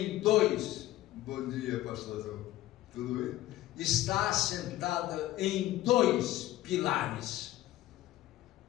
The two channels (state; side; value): quieter; right; 15.2 dB